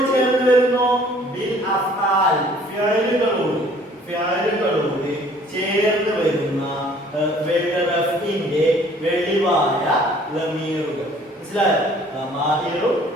ചേർന്ന് വരുന്നു? ബിൽ അഫ്ആൽ ഫിഅലുകളോട് ചേർന്ന് വരുന്ന റഫ്ഇന്റെ വെളിവായ ലമീറുകൾ. മനസ്സിലായോ? ലമായിറു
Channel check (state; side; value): normal; both; correlation 0.55